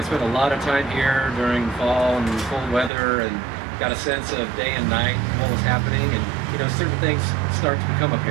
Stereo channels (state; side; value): drops out; left; at 2.9 s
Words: spent a lot of time here during fall and cold weather and got a sense of day and night, what was happening. And you know, certain things start to become